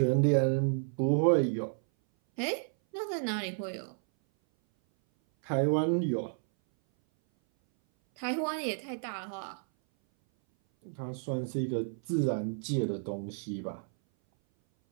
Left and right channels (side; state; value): left; silent; 57 dB below the other